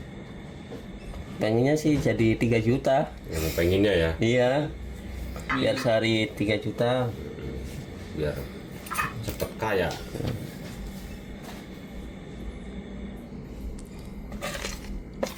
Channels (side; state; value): both; identical; correlation 1.00